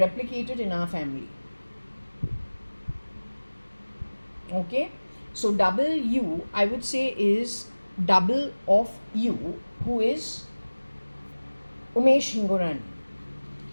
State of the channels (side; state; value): both; inverted; correlation -1.00